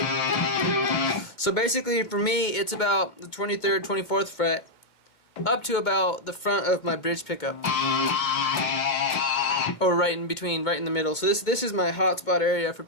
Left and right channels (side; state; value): right; late; 2.2 ms